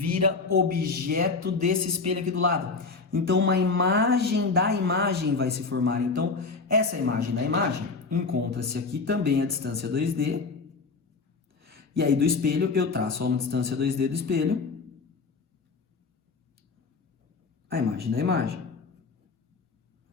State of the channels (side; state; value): right; quieter; 4.3 dB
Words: objeto desse espelho aqui do lado. Então, uma imagem da imagem vai se formar. Então, essa imagem da imagem encontra-se aqui também a distância 2D. E aí, do espelho, eu traço a uma distância 2D do espelho a imagem da imagem,